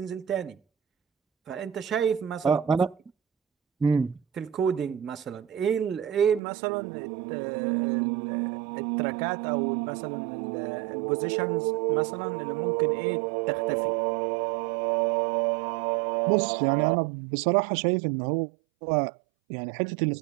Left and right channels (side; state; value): left; drops out; at 6.4 s